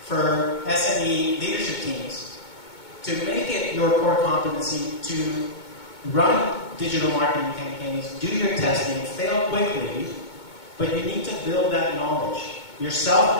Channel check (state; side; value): late; right; 2.2 ms